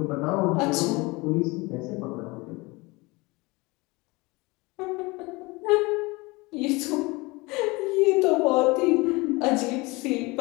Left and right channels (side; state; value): right; quieter; 24.2 dB